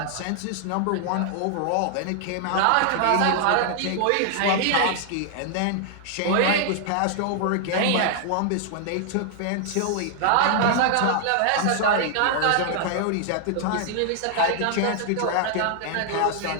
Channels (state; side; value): different; both; correlation 0.00